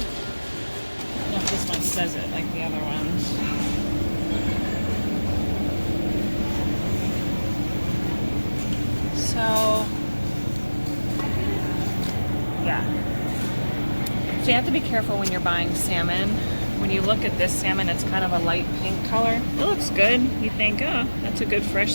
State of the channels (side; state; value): both; inverted; correlation -1.00